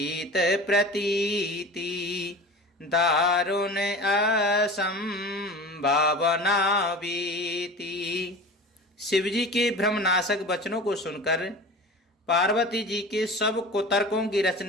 प्रतीति, दारुण असंभावना बीती। शिवजी के भ्रमनाशक वचनों को सुनकर पार्वती जी के सब कुतर्कों की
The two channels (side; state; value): both; normal; correlation 0.35